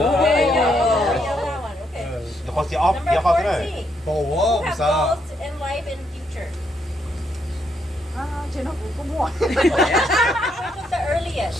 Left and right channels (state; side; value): normal; both; correlation 0.76